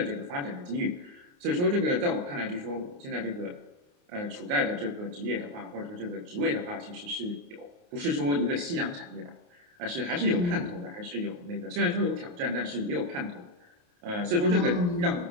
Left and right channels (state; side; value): late; left; 28 ms